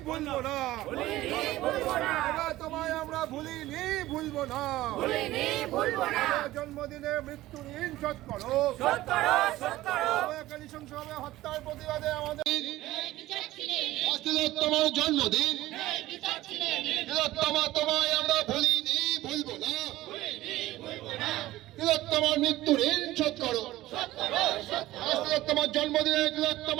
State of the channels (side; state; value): left; quieter; 16.4 dB